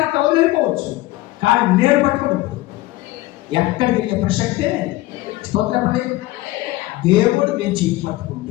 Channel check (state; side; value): quieter; right; 18.3 dB